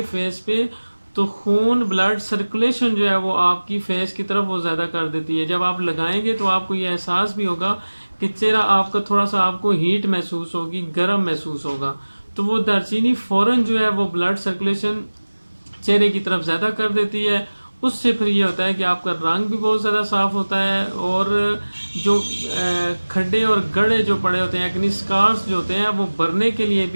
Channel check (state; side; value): inverted; both; correlation -1.00